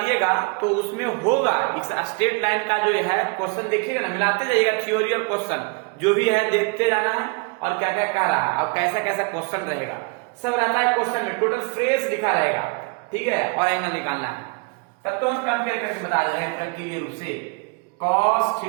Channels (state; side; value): quieter; left; 32.4 dB